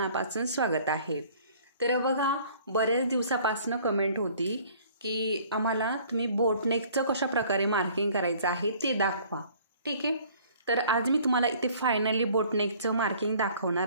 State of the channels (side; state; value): both; inverted; correlation -0.54